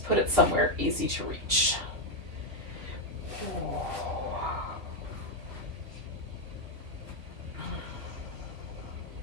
put it somewhere easy to reach. So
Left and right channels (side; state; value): left; late; 2.9 ms